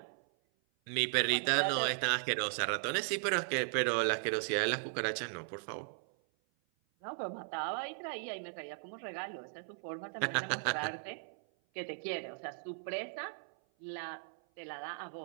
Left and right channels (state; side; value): silent; left; 53 dB below the other